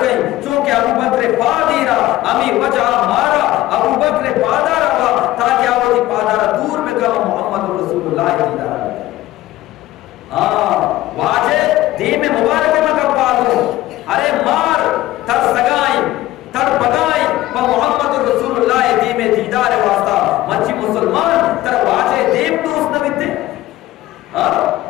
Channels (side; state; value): right; quieter; 16.0 dB